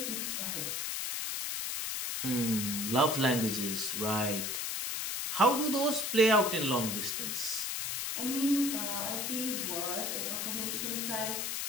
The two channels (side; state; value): left; noise; hiss, 2 dB below the sound